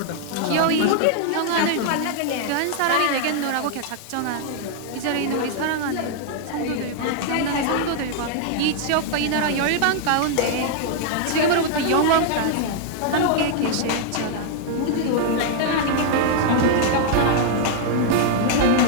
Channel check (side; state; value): both; different; correlation 0.00